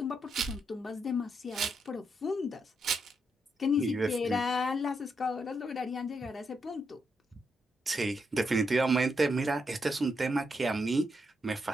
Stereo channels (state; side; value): normal; both; correlation 0.80